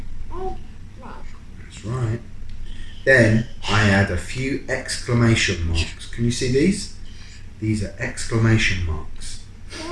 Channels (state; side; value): identical; both; correlation 1.00